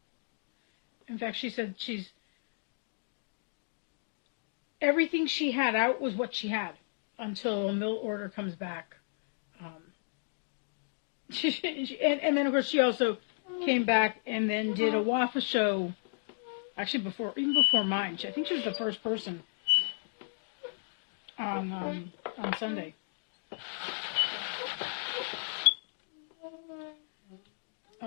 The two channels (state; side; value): silent; right; digital silence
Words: In fact, she said everything she had out was what she had until a mill order comes back. And then of course she also came back and then did a waffle show. Actually, even before mine, I think she was the first person on Sunday.